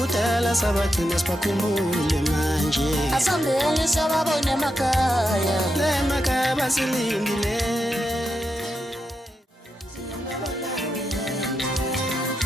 sabathina sibakhumbule manje Asambeni sababone emakaya Emakaya basilindile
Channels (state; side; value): normal; both; correlation 0.86